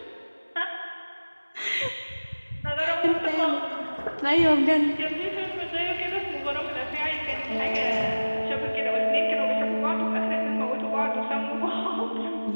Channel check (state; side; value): inverted; both; correlation -1.00